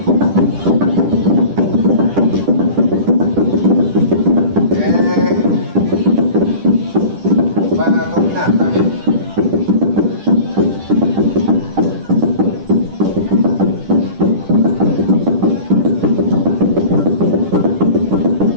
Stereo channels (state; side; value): late; left; 10 ms